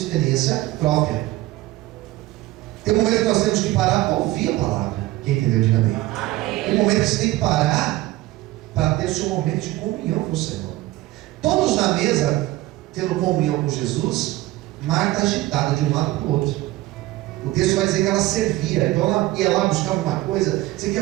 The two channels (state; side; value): quieter; left; 17.5 dB